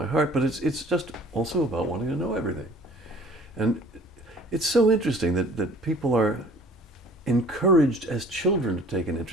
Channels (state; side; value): normal; both; correlation 0.50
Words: heart, but it's just also about wanting to know everything. And it's so interesting that people are encouraged as children to take an